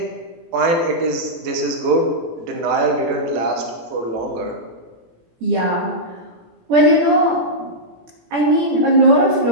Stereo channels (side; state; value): left; late; 18 ms